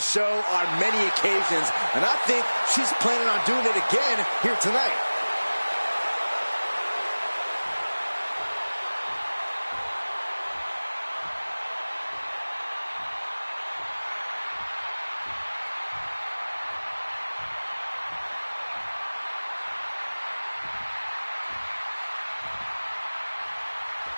on many occasions, and I think she's planning on doing it again here tonight.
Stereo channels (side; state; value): both; inverted; correlation -1.00